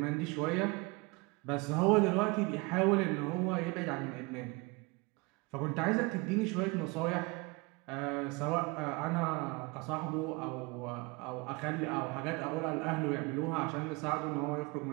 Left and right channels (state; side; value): quieter; left; 26.6 dB